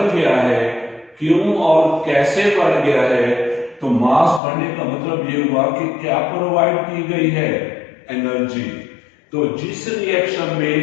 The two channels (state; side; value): drops out; right; at 4.4 s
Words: गया है, क्यों और कैसे बढ़ गया है, तो मास बढ़ने का मतलब ये हुआ कि क्या प्रोवाइड की गई है? एनर्जी। तो जिस रिएक्शन